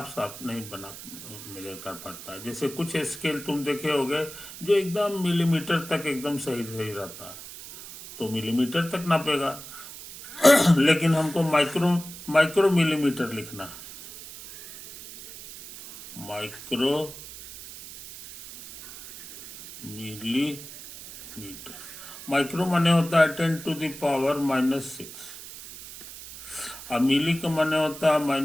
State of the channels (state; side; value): noise; right; hiss, 14 dB below the sound